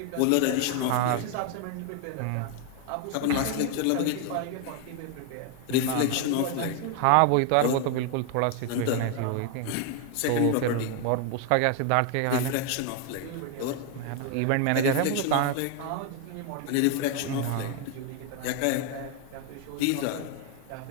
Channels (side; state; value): both; different; correlation 0.01